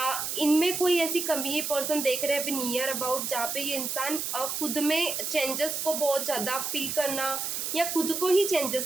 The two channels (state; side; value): noise; right; hiss, 3 dB below the sound